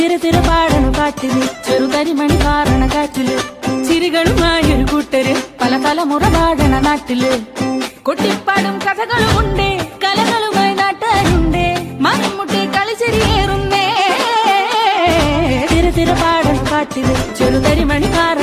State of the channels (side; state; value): both; identical; correlation 1.00